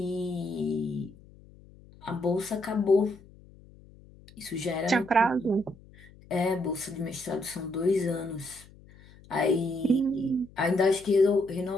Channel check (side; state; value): left; noise; hum, 24 dB below the sound